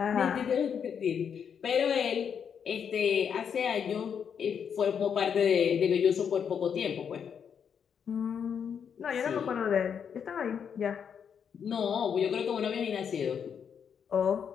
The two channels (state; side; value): quieter; right; 7.4 dB